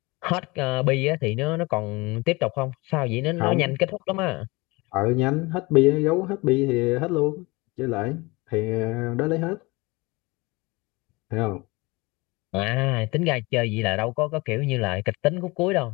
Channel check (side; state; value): right; quieter; 24.1 dB